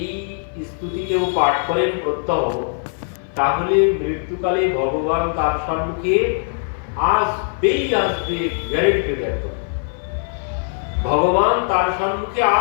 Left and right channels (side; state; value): right; silent; 58 dB below the other